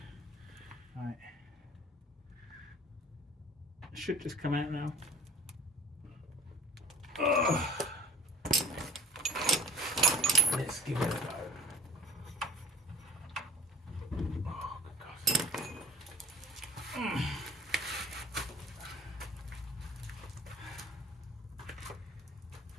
Right. It should just come out now. Ugh. Let's give it a go. Oh, good God.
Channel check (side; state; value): both; normal; correlation 0.46